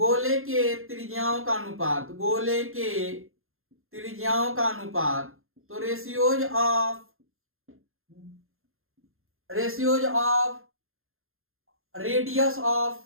के त्रिज्याओं का अनुपात, गोले के त्रिज्याओं का अनुपात, तो ratios of radius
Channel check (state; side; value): late; left; 0.61 ms